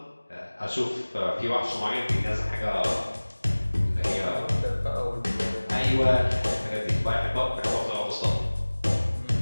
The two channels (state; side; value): inverted; both; correlation -1.00